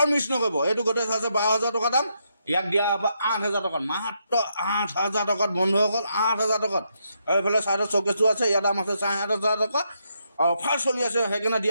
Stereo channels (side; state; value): both; inverted; correlation -0.79